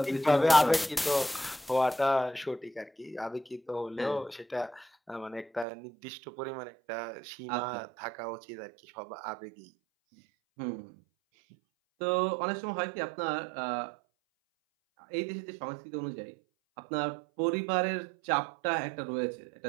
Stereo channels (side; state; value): left; drops out; at 5.7 s